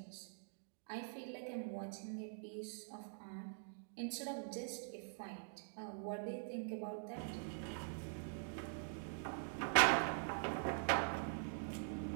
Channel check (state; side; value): silent; left; digital silence